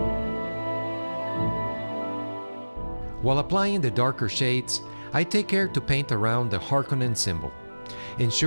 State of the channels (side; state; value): both; inverted; correlation -1.00